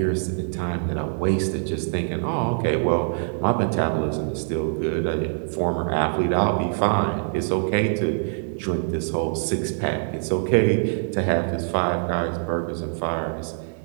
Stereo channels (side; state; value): left; silent; 57 dB below the other